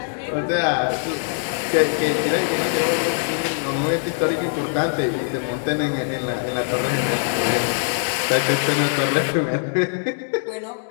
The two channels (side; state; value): right; silent; digital silence